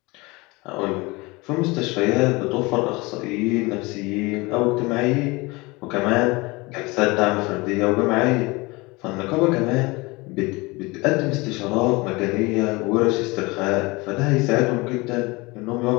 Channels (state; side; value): quieter; right; 24.1 dB